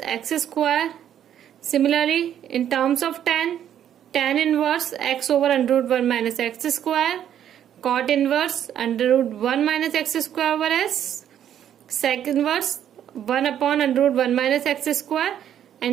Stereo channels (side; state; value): left; quieter; 10.1 dB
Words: x square. Similarly, in terms of tan inverse x over under root 1 minus x square. Cot inverse under root 1 minus x square over s. Sec inverse 1 upon under root 1 minus x square.